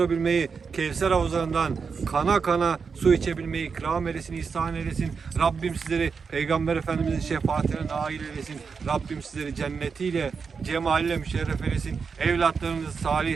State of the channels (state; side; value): quieter; left; 5.5 dB